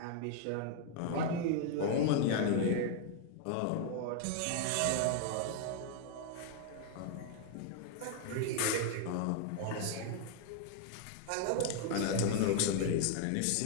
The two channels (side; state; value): both; different; correlation 0.00